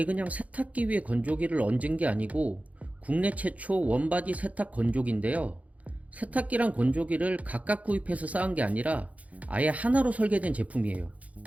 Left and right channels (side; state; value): left; late; 0.069 ms